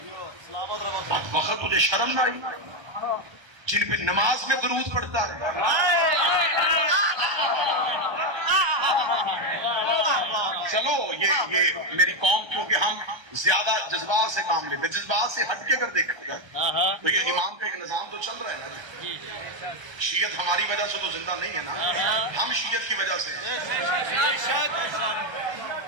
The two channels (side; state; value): left; late; 1.3 ms